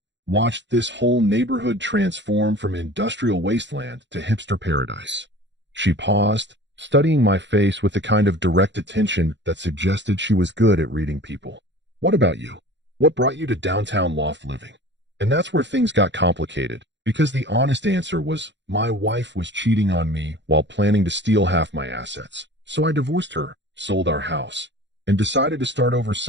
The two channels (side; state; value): left; late; 0.52 ms